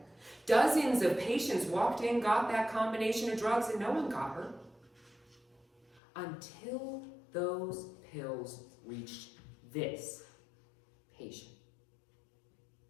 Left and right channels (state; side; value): drops out; right; at 6.0 s